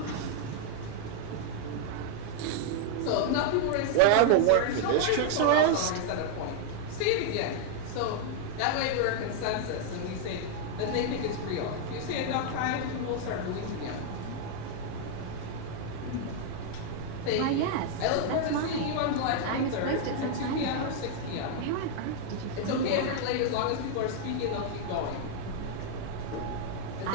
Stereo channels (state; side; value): different; both; correlation 0.00